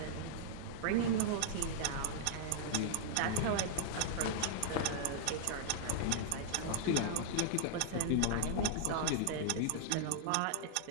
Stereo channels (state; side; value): different; both; correlation -0.01